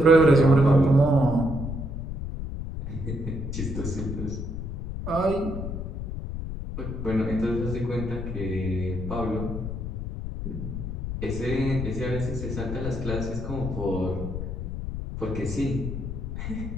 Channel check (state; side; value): noise; left; rumble, 5 dB below the sound